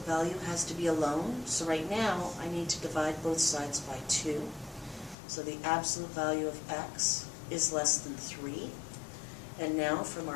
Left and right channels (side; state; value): right; drops out; at 5.2 s